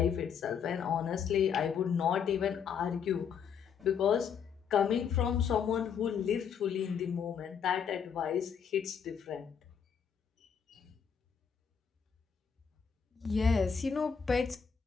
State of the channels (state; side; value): quieter; right; 7.1 dB